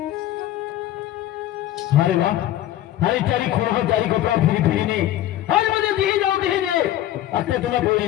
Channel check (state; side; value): quieter; right; 13.3 dB